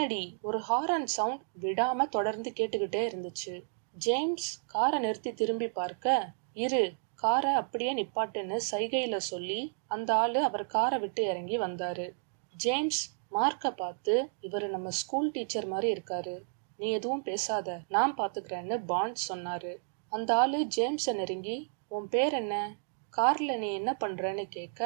ஒரு ஹாரன் சவுண்ட் விடாம தொடர்ந்து கேட்டுக்கிட்டே இருந்துச்சு. ஜேம்ஸ் காரை நிறுத்தி திரும்பி பார்க்க, இரு, காரை அப்படியே நிப்பாட்டுன்னு சைகையில சொல்லி அந்த ஆளு அவர் காரை விட்டு இறங்கி வந்தாரு. ஜேம்ஸ் மார்க்க பார்த்து, இவரு நம்ம ஸ்கூல் டீச்சர் மாதிரி இருக்காரு, நீ எதுவும் பேசாத, நான் பாத்துக்கிறேன்னு பாண்ட் சொன்னாரு. அந்த ஆளு ஜேம்ஸ நெருங்கி, உன் பேர் என்ன, கார்ல நீ என்ன பண்றன்னு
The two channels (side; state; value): left; silent; digital silence